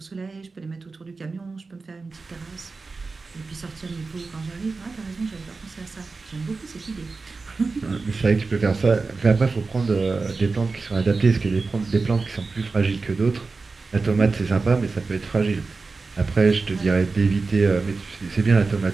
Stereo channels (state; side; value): quieter; left; 4.1 dB